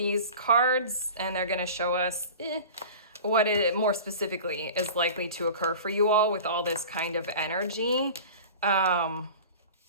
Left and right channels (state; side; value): inverted; both; correlation -0.37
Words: cards and they're going to show us what it more specifically is likely to occur for you all with all this kind of energy.